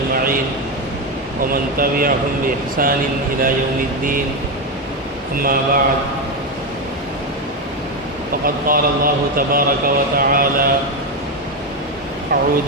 ومن تبعهم بإحسان إلى يوم الدين. أما بعد، فقد قال الله تبارك وتعالى: أعوذ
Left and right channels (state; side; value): normal; both; correlation 0.10